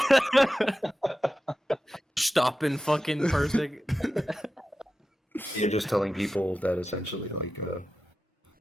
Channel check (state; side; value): normal; both; correlation 0.93